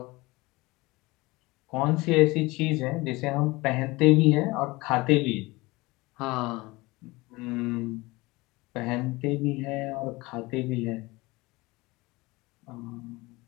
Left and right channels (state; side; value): quieter; right; 22.2 dB